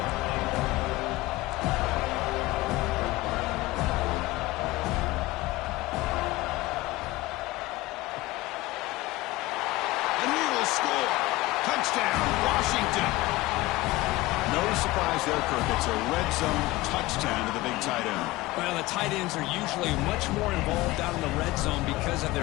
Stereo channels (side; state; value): right; quieter; 19.2 dB